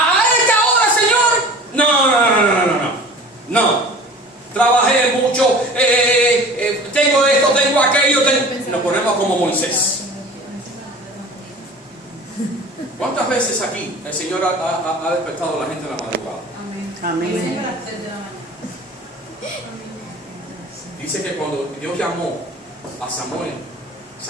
esta hora, Señor? No. Trabajé mucho, tengo esto, tengo aquello. Nos ponemos como Moisés. ¿Cuántas veces aquí el Señor ha despertado a la gente en la madrugada? Amén. Amén. Siempre a las 3 de la mañana. Dice que cuando Dios llamó a Samuel,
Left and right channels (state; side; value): normal; both; correlation 0.41